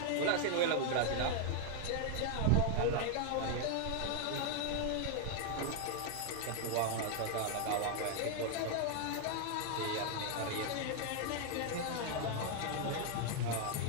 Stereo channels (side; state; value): both; different; correlation 0.00